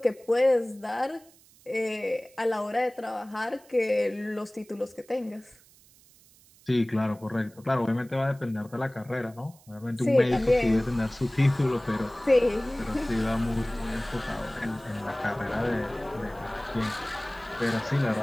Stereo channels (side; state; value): right; noise; hiss, 27 dB below the sound